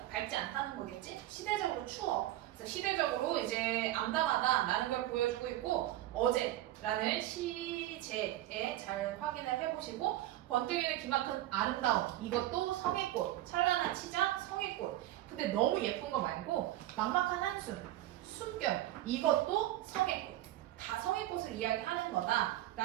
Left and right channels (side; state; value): left; quieter; 14.7 dB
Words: 밝지 않다는 거겠지? 시대적으로 추워. 그래서 시대적으로 이제 암담하다라는 걸 보여주고 있고 어제라는 시제에 잘 확인을 해보시고 번뜩이는 기막힌 아름다움 이것도 성의꽃 찬란한 치장 성의꽃 근데 너무 예쁜 거 말고 막막한 한숨 숨결 이것도 성의꽃 다 성의꽃을 이야기하는